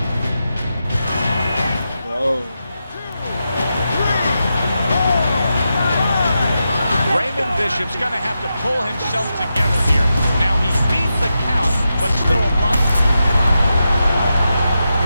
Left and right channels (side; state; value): both; inverted; correlation -0.88